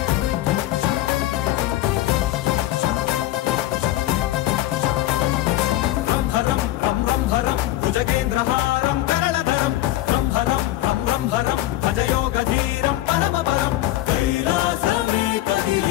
భుజగేంద్రహారం కరణధరం రంభరం రం రంభరం భజయోగధీరం పరమపరం కైలాసమే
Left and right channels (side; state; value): right; quieter; 15.3 dB